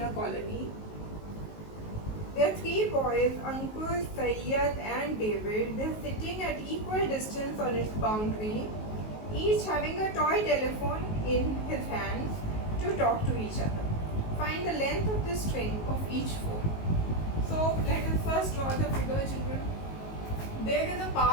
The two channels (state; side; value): late; right; 19 ms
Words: colony. There are 3 boys, Ankur, Sayyad and David. They are sitting at equal distance on its boundary, each having a toy telephone in his hands to talk to each other. Find the length of the string of each phone. So let us first draw the figure, children. There is a